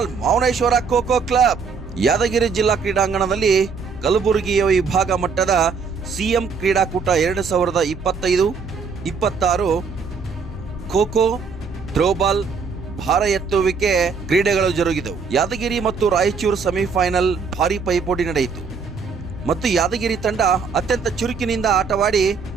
ಮೌನೇಶ್ವರ ಖೋ-ಖೋ ಕ್ಲಬ್ ಯಾದಗಿರಿ ಜಿಲ್ಲಾ ಕ್ರೀಡಾಂಗಣದಲ್ಲಿ ಕಲಬುರಗಿಯ ವಿಭಾಗ ಮಟ್ಟದ ಸಿಎಂ ಕ್ರೀಡಾಕೂಟ 2025-26 ಖೋ-ಖೋ, ಥ್ರೋಬಾಲ್, ಭಾರ ಎತ್ತುವಿಕೆ ಕ್ರೀಡೆಗಳು ಜರುಗಿದವು. ಯಾದಗಿರಿ ಮತ್ತು ರಾಯಚೂರು ಸೆಮಿಫೈನಲ್ ಭಾರಿ ಪೈಪೋಟಿ ನಡೆಯಿತು ಮತ್ತು ಯಾದಗಿರಿ ತಂಡ ಅತ್ಯಂತ ಚುರುಕಿನಿಂದ ಆಟವಾಡಿ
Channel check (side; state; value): left; quieter; 5.4 dB